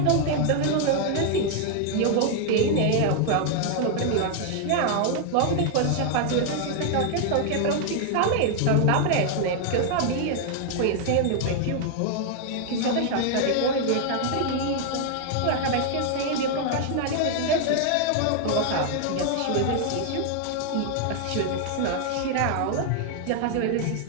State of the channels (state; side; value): different; both; correlation 0.00